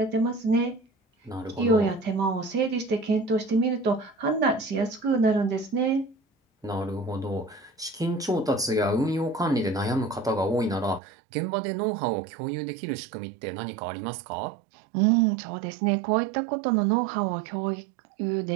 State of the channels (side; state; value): left; drops out; at 11.0 s